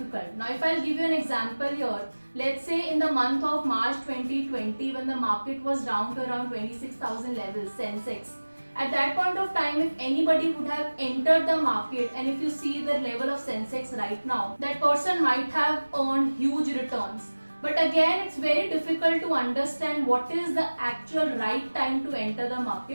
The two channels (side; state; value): both; inverted; correlation -1.00